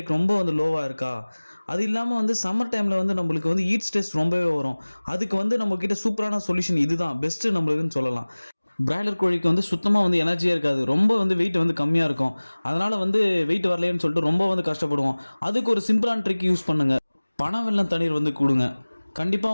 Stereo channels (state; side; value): inverted; both; correlation -1.00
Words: ரொம்ப வந்து லோவாக இருக்கா, அது இல்லாமல் வந்து சம்மர் டைமில் வந்து நம்மளுக்கு வந்து ஹீட் ஸ்ட்ரெஸ் ரொம்பவே வரும். அதுக்கு வந்து நம்மக்கிட்ட சூப்பரான சொல்யூஷன் இதுதான் பெஸ்ட்டு நம்மளுக்குன்னு சொல்லலாம். பிராய்லர் கோழிக்கு வந்து சுத்தமாக வந்து எனர்ஜியாக இருக்காது, ரொம்ப வந்து வெயிட் வந்து கம்மியாக இருக்கும். அதனால் வந்து வெயிட் வரலையேன்னு சொல்லிட்டு ரொம்ப வந்து கஷ்டப்படுவோம். அதுக்கு ஒரு சிம்பிளான ட்ரிக் யூஸ் பண்ணுங்கள். பனவெல்லம் தண்ணீர் வந்து கொடுங்க.